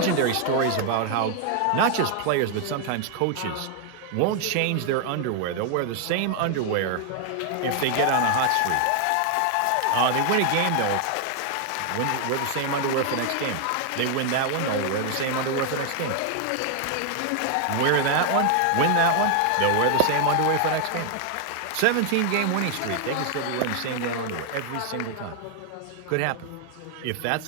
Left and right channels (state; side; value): different; both; correlation 0.00